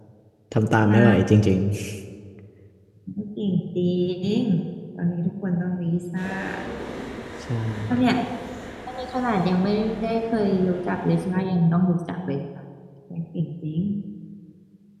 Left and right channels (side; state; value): both; identical; correlation 1.00